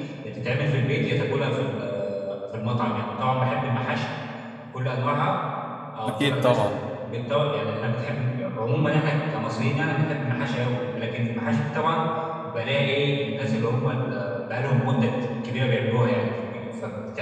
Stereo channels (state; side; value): identical; both; correlation 1.00